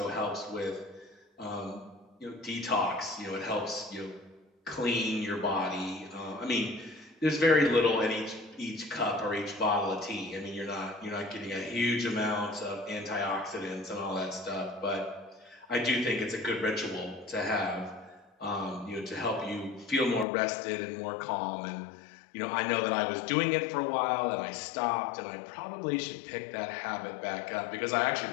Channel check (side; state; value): right; drops out; at 20.2 s